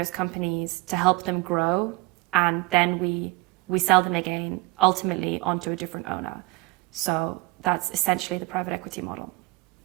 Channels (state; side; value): quieter; left; 24.2 dB